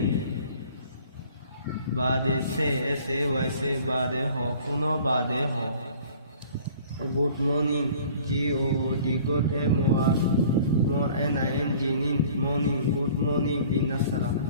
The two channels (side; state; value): both; inverted; correlation -0.50